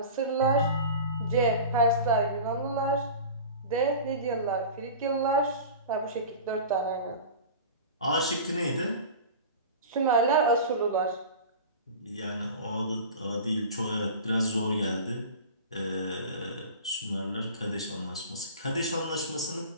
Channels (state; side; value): inverted; both; correlation -0.35